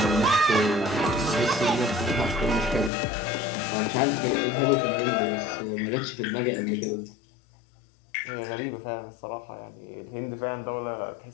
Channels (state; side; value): drops out; right; at 2.9 s